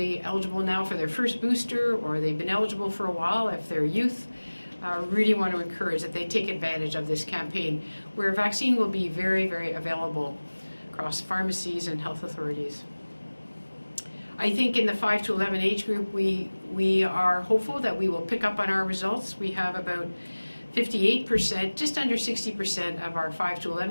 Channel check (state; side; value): inverted; both; correlation -1.00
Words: eligible now for their first booster, or they've been eligible for a while if they're youth, really want to encourage that they take advantage of this campaign, where vaccine will be very, very available across pharmacies and health authorities. I think in the 5 to 11 age group, we are hopeful that we will pick up on our results. We have about 58%, just under 60% of our 5 to